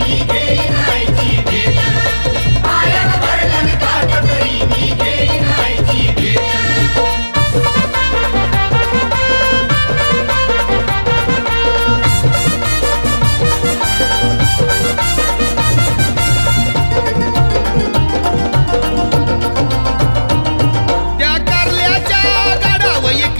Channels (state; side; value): inverted; both; correlation -1.00